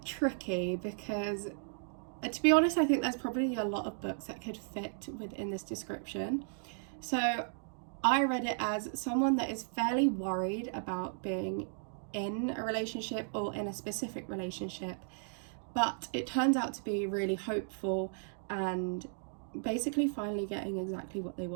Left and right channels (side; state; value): left; silent; digital silence